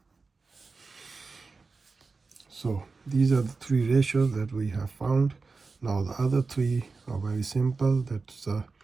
So these are the three ratios that we have found. Now the other three are very simple. That's the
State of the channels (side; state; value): left; quieter; 4.2 dB